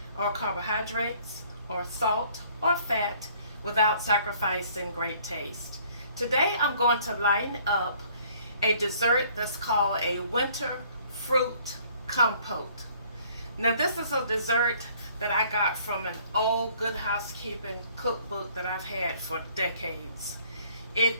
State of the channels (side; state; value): both; inverted; correlation -0.59